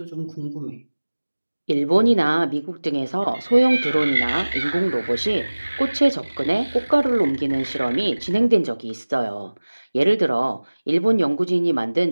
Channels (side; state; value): both; inverted; correlation -1.00